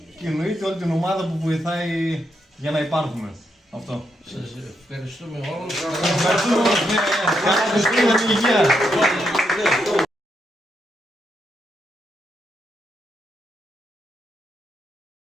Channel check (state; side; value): normal; both; correlation 0.80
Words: Και εννοείται όλη την ομάδα που βοηθάει για να υπάρχουμε. Αυτό. Σας ευχαριστούμε όλους. Ευχαριστούμε όλους. Καλή υγεία.